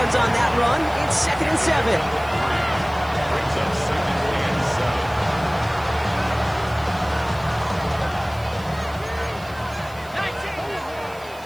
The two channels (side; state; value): right; noise; hiss, 23 dB below the sound